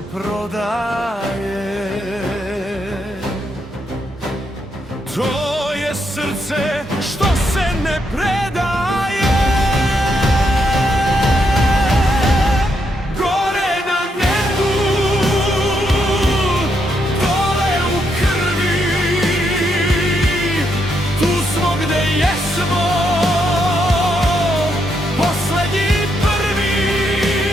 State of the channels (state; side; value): normal; both; correlation 0.78